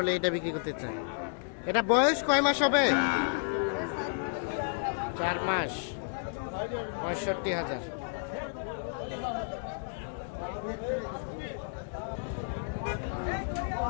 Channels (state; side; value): silent; right; digital silence